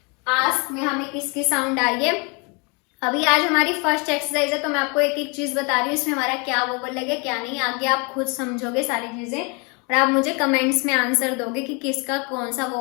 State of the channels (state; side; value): quieter; right; 31.7 dB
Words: आस्क में हमें किसकी साउंड आ रही है, अभी आज हमारी फर्स्ट एक्सरसाइज है तो मैं आपको एक एक चीज बता रही हूँ, इसमें हमारा क्या वोवल लगे क्या नहीं। आगे आप खुद समझोगे सारी चीजें और आप मुझे कमेंट्स में आंसर दोगे कि किसका कौन सा